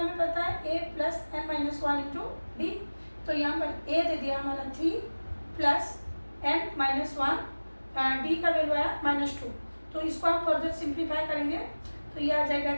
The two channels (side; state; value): both; inverted; correlation -1.00